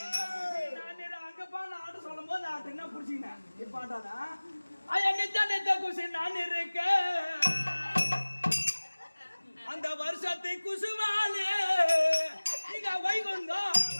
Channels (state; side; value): inverted; both; correlation -1.00